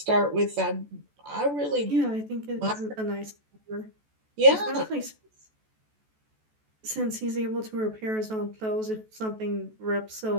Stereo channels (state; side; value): late; left; 14 ms